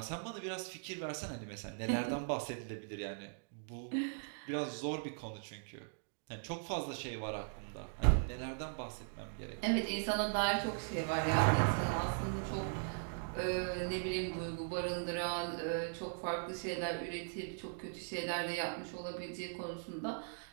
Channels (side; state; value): left; silent; digital silence